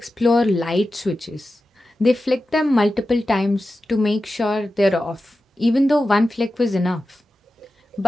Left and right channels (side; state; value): both; normal; correlation 0.93